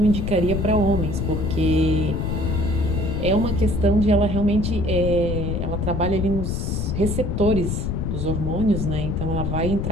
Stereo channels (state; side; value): noise; left; rumble, 1 dB below the sound